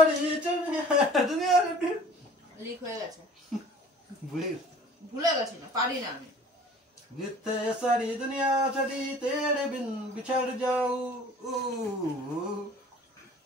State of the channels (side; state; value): both; normal; correlation 0.48